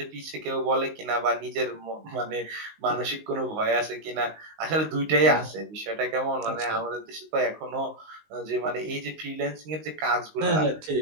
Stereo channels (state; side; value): late; left; 19 ms